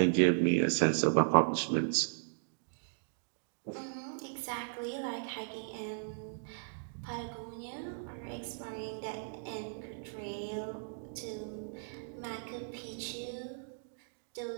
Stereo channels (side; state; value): left; silent; digital silence